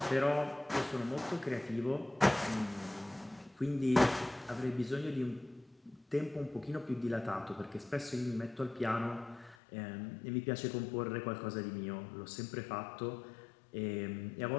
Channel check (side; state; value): right; drops out; at 9.6 s